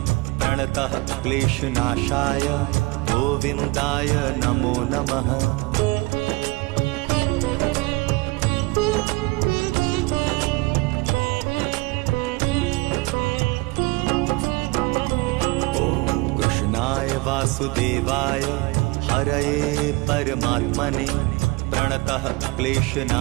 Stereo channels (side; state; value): left; quieter; 24.5 dB